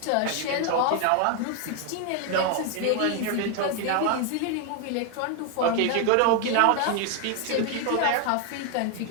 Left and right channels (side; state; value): both; different; correlation 0.01